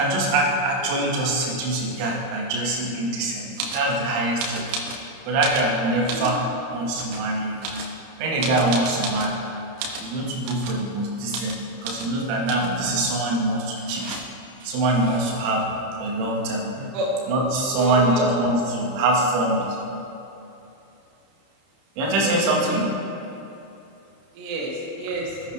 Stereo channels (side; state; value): left; late; 30 ms